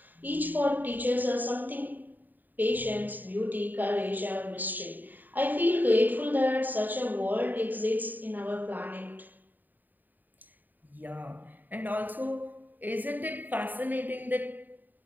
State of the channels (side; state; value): left; late; 0.087 ms